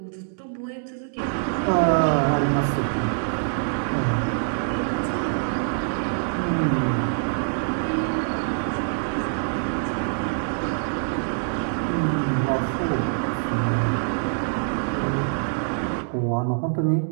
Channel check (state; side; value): silent; left; 62 dB below the other